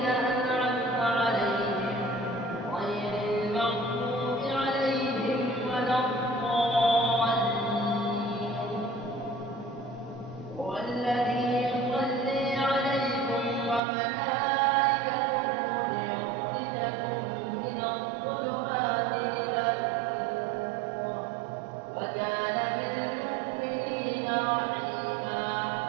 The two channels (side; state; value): left; drops out; at 13.8 s